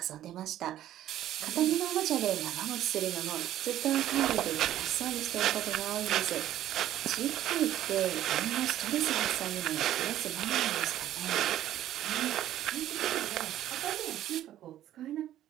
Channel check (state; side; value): quieter; left; 12.6 dB